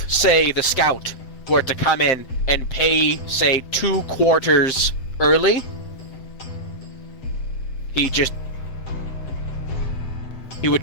say the scout were to come in and pay, say, 2 quarters early, he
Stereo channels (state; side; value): late; right; 7.9 ms